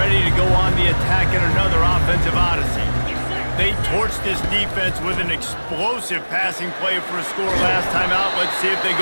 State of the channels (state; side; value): inverted; both; correlation -1.00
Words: to go on the attack in another offensive odyssey. They torched this defense with an explosive passing play for a score last time out. Let's see if they